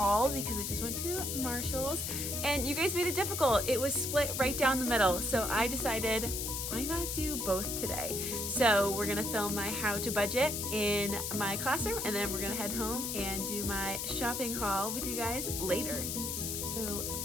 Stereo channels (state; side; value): noise; left; hiss, 3 dB below the sound